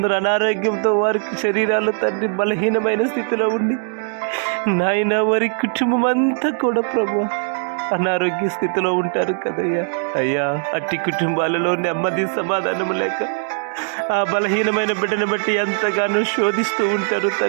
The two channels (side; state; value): left; silent; digital silence